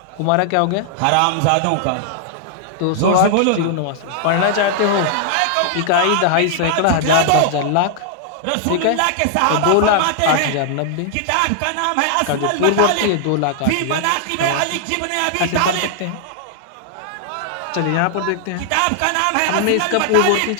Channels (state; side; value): different; both; correlation -0.01